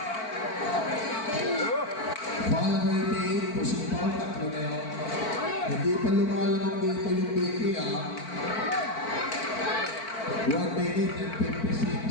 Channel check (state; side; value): late; right; 4.5 ms